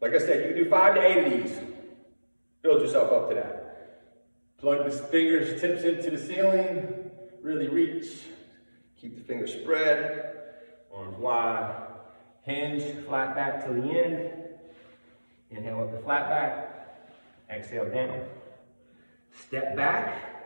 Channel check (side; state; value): both; inverted; correlation -1.00